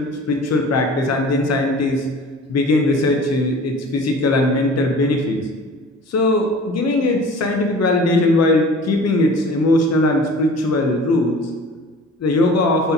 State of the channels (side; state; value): both; normal; correlation 0.43